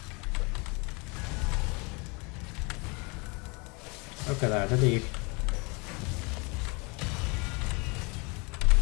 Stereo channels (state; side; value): quieter; right; 29.6 dB